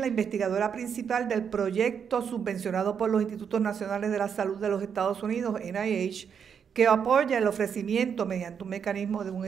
la investigadora principal del proyecto subvencionado por los Institutos Nacionales de la Salud de los Estados Unidos, NIH, que apoya el ofrecimiento mediante un mecanismo de un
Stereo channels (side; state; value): left; quieter; 7.2 dB